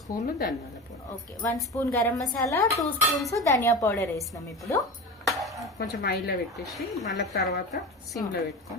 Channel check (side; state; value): both; normal; correlation 0.28